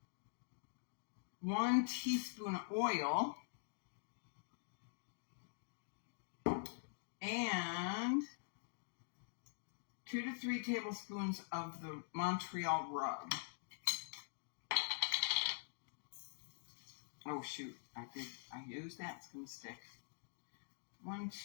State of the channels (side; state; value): right; silent; digital silence